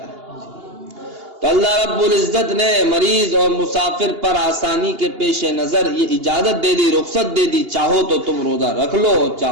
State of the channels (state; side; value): late; left; 2.8 ms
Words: تو اللہ رب العزت نے مریض اور مسافر پر آسانی کے پیش نظر یہ اجازت دے دی، رخصت دے دی، چاہو تو تم روزہ رکھ لو